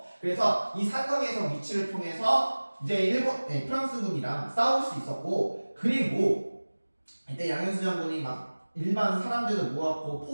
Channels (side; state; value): both; inverted; correlation -1.00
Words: 그래서 이 산성에서 위치를 통해서 이제 프랑스군이랑 싸울 수 있었고 그리고 이때 양현수 장군이 막 일반 사람들을 모았고